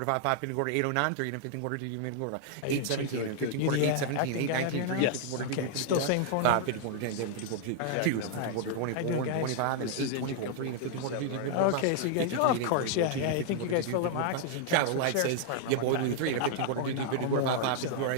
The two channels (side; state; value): both; different; correlation -0.01